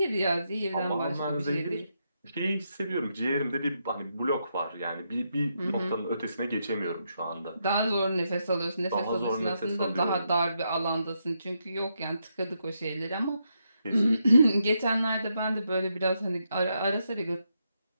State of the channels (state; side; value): inverted; both; correlation -0.81